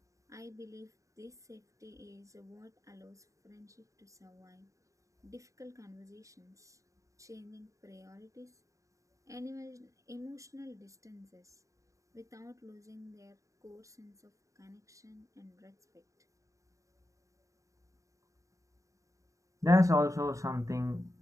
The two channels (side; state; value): left; late; 0.16 ms